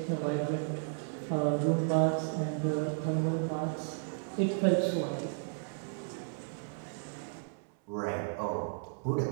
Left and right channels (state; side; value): silent; left; 55 dB below the other